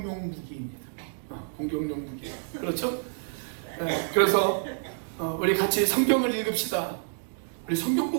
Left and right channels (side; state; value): left; silent; digital silence